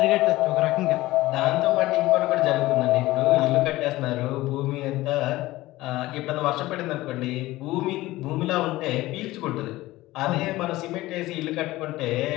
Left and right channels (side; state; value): right; quieter; 17.9 dB